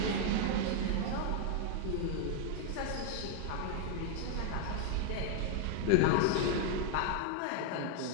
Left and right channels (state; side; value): different; both; correlation 0.00